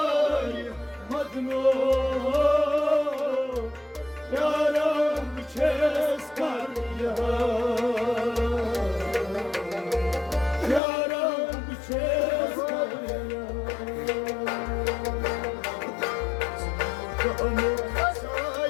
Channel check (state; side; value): drops out; right; at 10.8 s